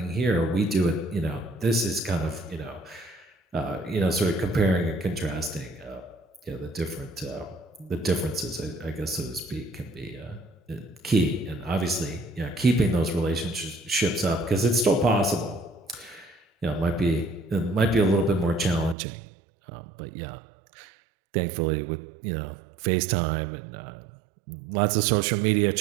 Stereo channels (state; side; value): drops out; left; at 18.9 s